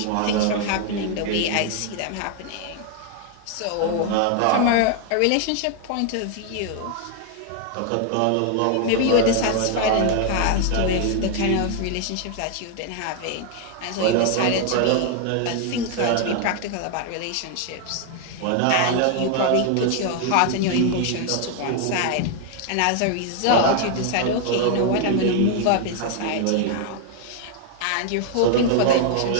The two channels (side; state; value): both; different; correlation 0.00